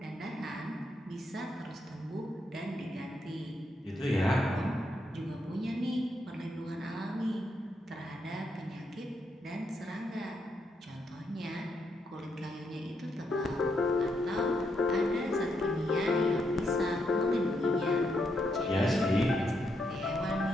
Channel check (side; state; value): both; normal; correlation 0.79